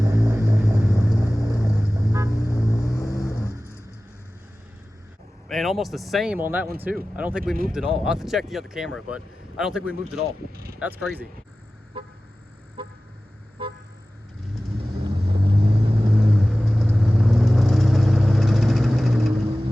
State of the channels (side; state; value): both; normal; correlation 0.96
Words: And almost the same on that one too. I don't think we moved at all. I'll have to check the other camera, but I don't think we moved at all. That's crazy.